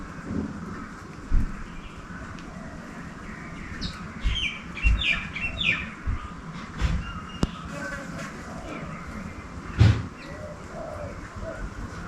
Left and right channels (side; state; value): both; identical; correlation 1.00